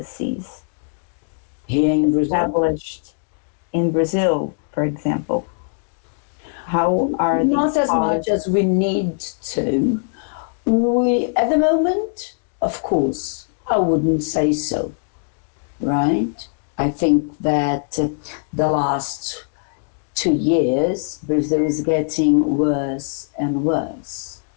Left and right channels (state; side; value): silent; right; digital silence